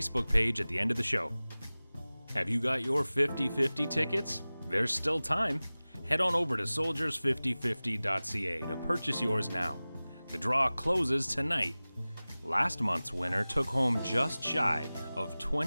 page at the end of the show. Have you got your 50/50 tickets? There's still time. Head on over to soldiers5050.ca to purchase yours now. The draw closes tonight. Last month's winner took home just shy of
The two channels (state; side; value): inverted; both; correlation -0.98